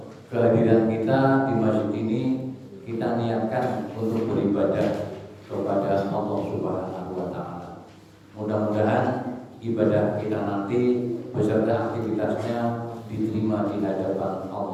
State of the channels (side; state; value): both; identical; correlation 1.00